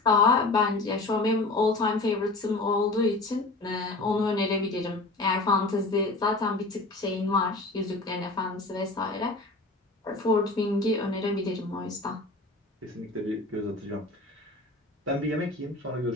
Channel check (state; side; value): quieter; right; 3.2 dB